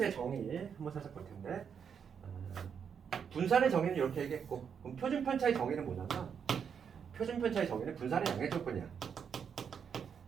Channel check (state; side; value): quieter; left; 7.2 dB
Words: 정의 한번 살짝 볼 텐데 분산의 정의는 이렇게 얘기했고 그럼 표준 편차의 정의는 뭐냐면 표준 편차의 정의는 분산의 양의 조건이야.